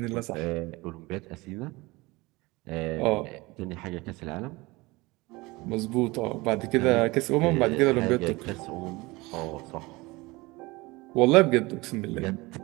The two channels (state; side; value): quieter; left; 22.6 dB